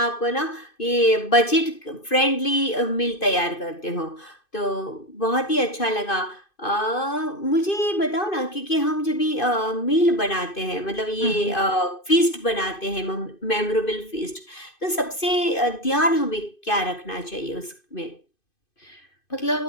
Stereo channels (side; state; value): right; late; 2.5 ms